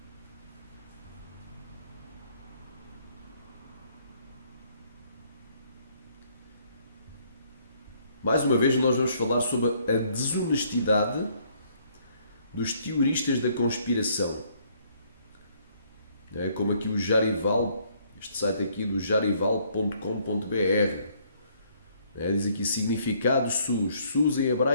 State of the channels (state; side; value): inverted; both; correlation -0.66